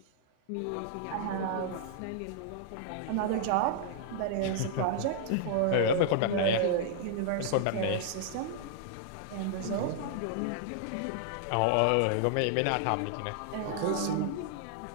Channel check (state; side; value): different; both; correlation -0.01